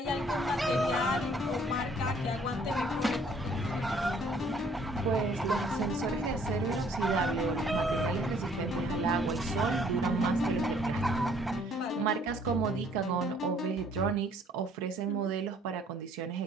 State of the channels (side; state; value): both; normal; correlation 0.60